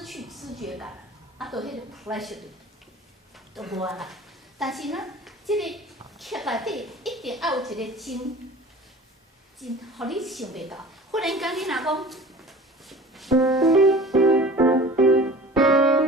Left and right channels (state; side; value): normal; both; correlation 0.41